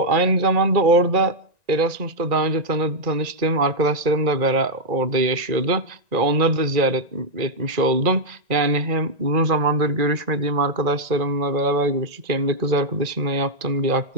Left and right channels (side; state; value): left; late; 1.9 ms